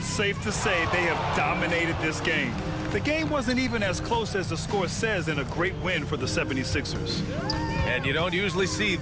safe to say they have dominated this game. The game wasn't even as close as the score says in a great win for the 76ers. And you don't usually see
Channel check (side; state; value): both; identical; correlation 1.00